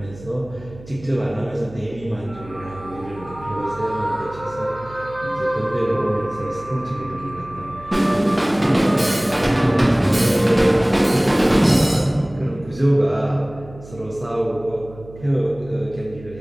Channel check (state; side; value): noise; right; hum, 18 dB below the sound